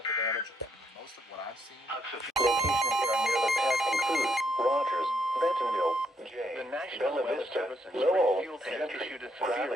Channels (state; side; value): normal; both; correlation 0.73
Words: the damage. Most of what I've seen. Locations near the path include Rogers, Bentonville, Jay, The National Bella Weather Vista, Service and Lowell, Springfield have Gentry, issued a severe